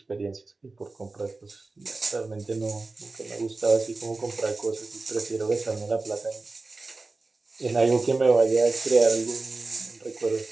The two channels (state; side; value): quieter; left; 3.5 dB